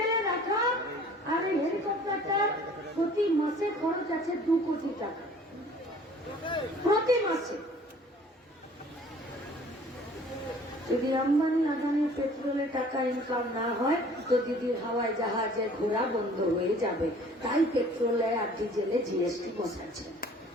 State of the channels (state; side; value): normal; both; correlation 0.51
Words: রাখা আর এই হেলিকপ্টারটার প্রতি মাসে খরচ আছে 2 কোটি টাকা প্রতি মাসে। যদি আম্বানি আদানির পেট্রোলে টাকা ইনকাম না হয় তো দিদির হাওয়ায় জাহাজে ঘোরা বন্ধ হয়ে যাবে। তাই পেট্রোলে আর ডিজেলে जीएसटी বসাচ্ছে।